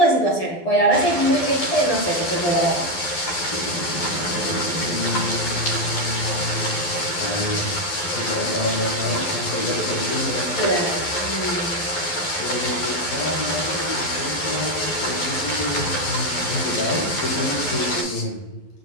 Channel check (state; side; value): late; right; 12 ms